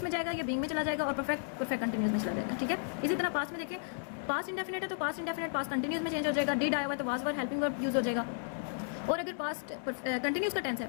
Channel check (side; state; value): right; silent; digital silence